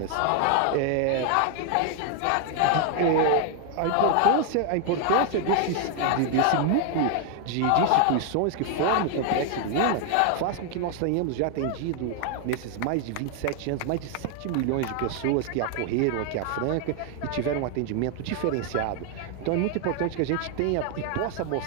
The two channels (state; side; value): different; both; correlation 0.00